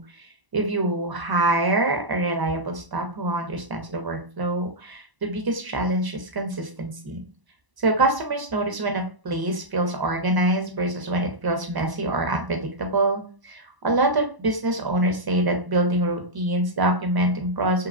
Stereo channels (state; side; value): late; left; 1.0 ms